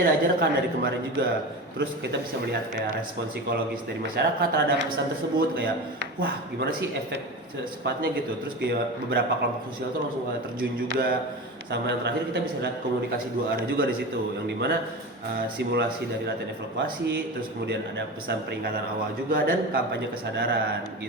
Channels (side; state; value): both; normal; correlation 0.27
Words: diajarkan dari kemarin juga. Terus kita bisa melihat kayak respon psikologis dari masyarakat terhadap pesan tersebut, kayak wah gimana sih efek sepatnya gitu. Terus kayak beberapa kelompok sosial tuh langsung kayak terjun juga. Sama yang terakhir kita bisa lihat komunikasi dua arah juga di situ, yang dimana simulasi dari latihan evaluasi, terus kemudian ada pesan peringatan awal juga, dan kampanye kesadaran